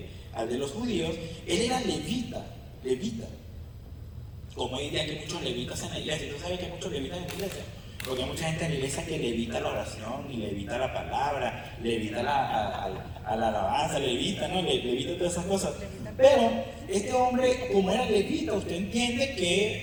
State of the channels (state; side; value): identical; both; correlation 1.00